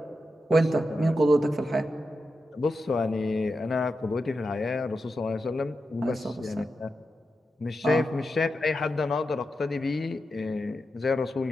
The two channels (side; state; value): both; normal; correlation 0.89